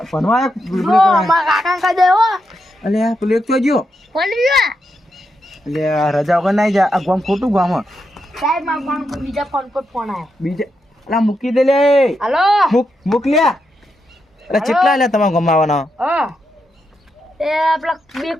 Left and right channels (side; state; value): both; normal; correlation 0.84